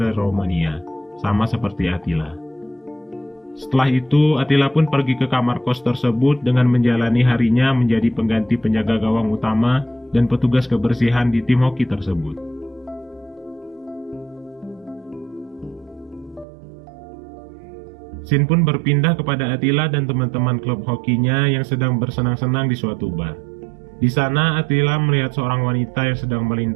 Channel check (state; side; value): drops out; left; at 16.4 s